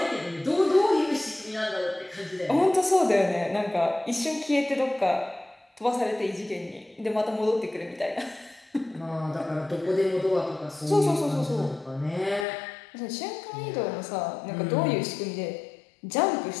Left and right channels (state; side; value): drops out; right; at 12.5 s